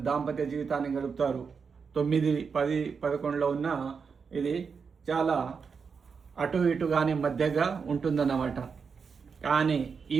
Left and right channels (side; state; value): left; quieter; 5.7 dB